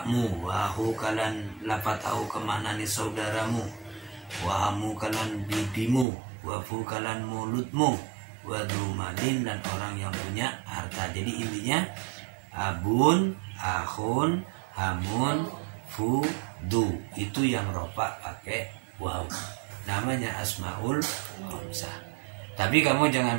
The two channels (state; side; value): drops out; left; at 6.1 s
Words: wahu kalan lapat au kemaknani saudaramu, wahamu kalan bibimu, wafu kalan mulutmu, wadumadin dan orang yang punya harta. Jadi intinya abun, ahun, hamun, fudu itu yang rofa pakai waw. Namanya asmaul khamsah. Tapi kamu